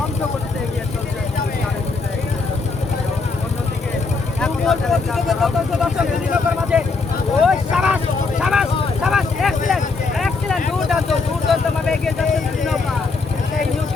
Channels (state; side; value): quieter; right; 4.2 dB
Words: করতে এগিয়ে চলছে। অন্যদিকে একতা চ্যালেঞ্জার মাঝে ওই সাবাস সাবাস সাবাস এক্সিলেন্ট এক্সিলেন্ট দুর্দান্ত ভাবে এগিয়ে যাচ্ছে দুই নৌকা। সেই নিউ